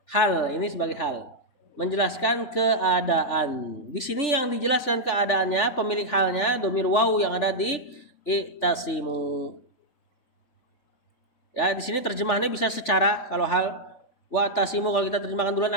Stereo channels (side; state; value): right; late; 3.4 ms